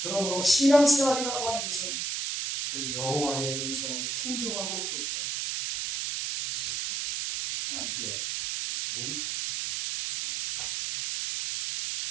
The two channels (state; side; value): noise; right; hiss, 2 dB below the sound